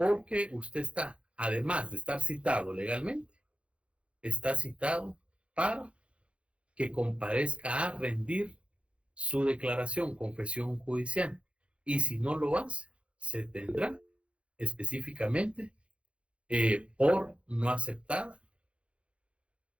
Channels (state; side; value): late; left; 0.060 ms